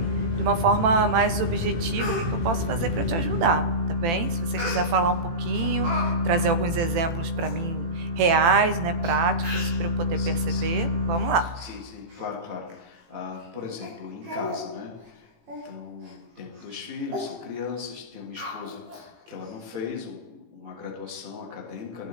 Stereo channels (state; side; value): late; left; 18 ms